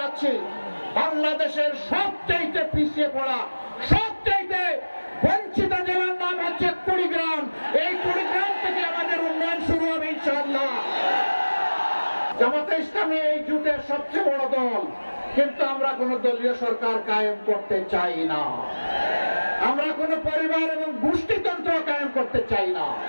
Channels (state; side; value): inverted; both; correlation -1.00